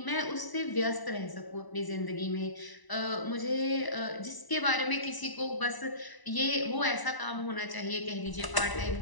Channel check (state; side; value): late; right; 1.0 ms